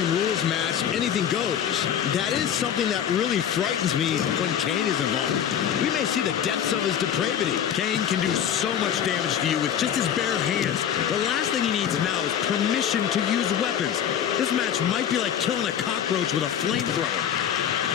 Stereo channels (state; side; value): quieter; right; 9.3 dB